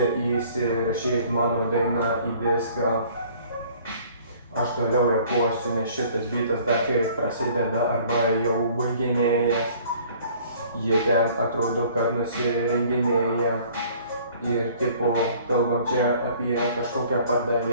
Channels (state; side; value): inverted; both; correlation -0.54